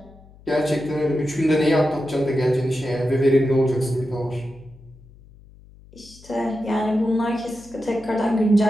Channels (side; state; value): left; noise; hum, 24 dB below the sound